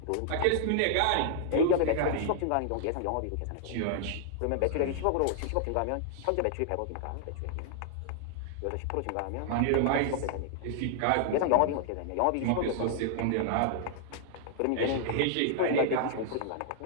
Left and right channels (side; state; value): both; different; correlation -0.01